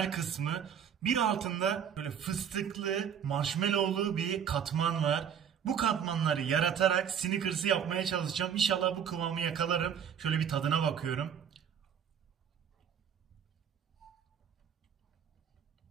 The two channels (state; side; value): quieter; left; 8.2 dB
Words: kısmı. Bir altında böyle fıstıklı, marshmallowlu bir katman var. Bu katmanları yaratarak Snickers'ı yapmaya çalışacağım. İnşallah bu kıvamı yakalarım. Şöyle bir tadına bakıyorum.